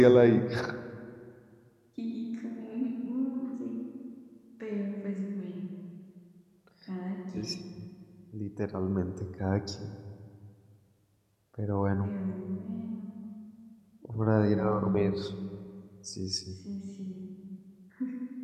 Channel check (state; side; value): identical; both; correlation 1.00